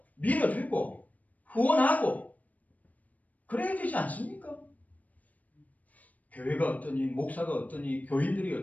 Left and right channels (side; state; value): right; late; 0.074 ms